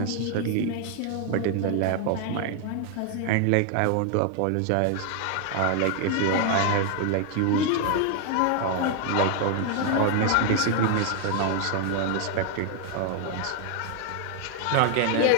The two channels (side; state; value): both; different; correlation 0.00